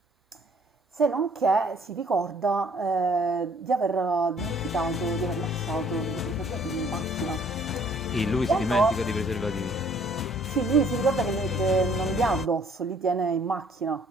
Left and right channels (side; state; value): both; normal; correlation 0.60